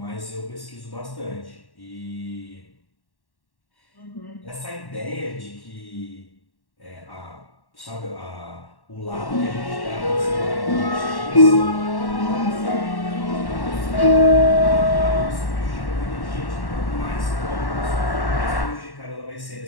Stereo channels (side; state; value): right; late; 1.1 ms